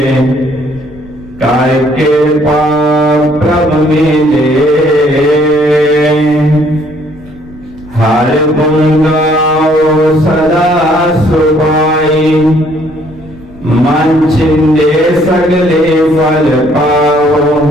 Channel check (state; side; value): noise; right; rumble, 21 dB below the sound